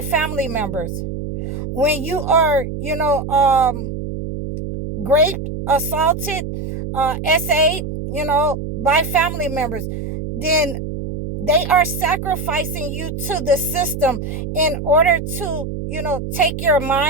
family members, when you are, raped, assaulted, SA'd, by family members, then they are sacrificing you to the system in order to, take your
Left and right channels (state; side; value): noise; right; hum, 6 dB below the sound